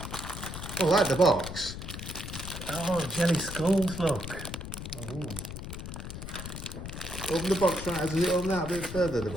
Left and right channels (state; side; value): noise; left; rumble, 8 dB below the sound